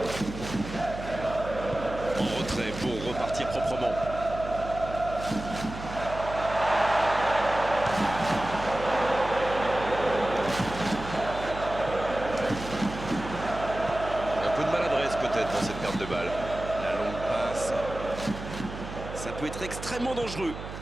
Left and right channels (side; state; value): right; noise; hum, 10 dB below the sound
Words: En retrait pour repartir proprement. Un peu de maladresse peut-être dans cette perte de balle. La longue passe. Ça peut être extrêmement dangereux.